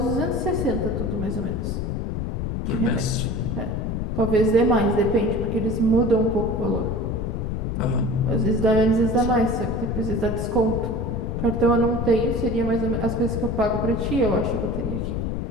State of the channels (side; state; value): left; noise; rumble, 2 dB below the sound